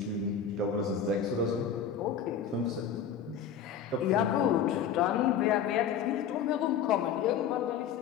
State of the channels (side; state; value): right; quieter; 7.8 dB